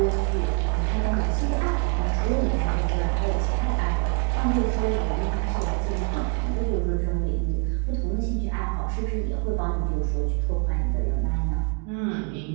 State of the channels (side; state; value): left; quieter; 35.3 dB